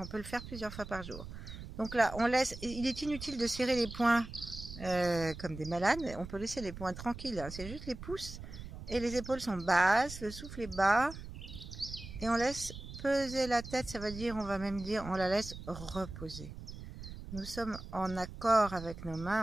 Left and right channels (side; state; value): right; noise; rumble, 11 dB below the sound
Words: peut le faire plusieurs fois par jour. Donc là, on laisse. Il est inutile de serrer les poings comme des malades. On peut laisser les poings tranquilles. Hein. C'est juste les pouces et les épaules sont basses. Le souffle est bas. Et on laisse peser la tête. Ça veut dire, on va même dire, on la laisse reposer. Nous sommes en accord avec nos